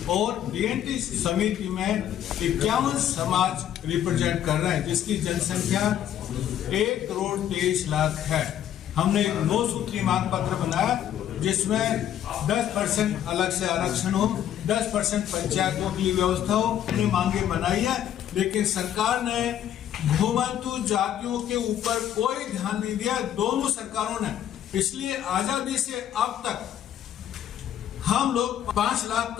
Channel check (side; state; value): right; quieter; 10.7 dB